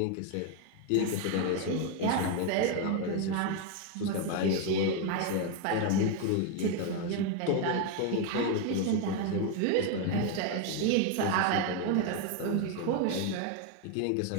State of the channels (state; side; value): different; both; correlation 0.02